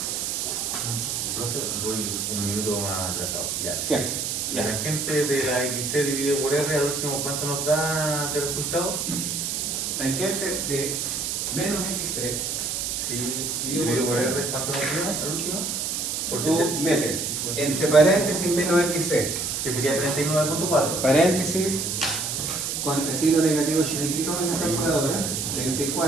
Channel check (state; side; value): noise; right; hiss, 2 dB below the sound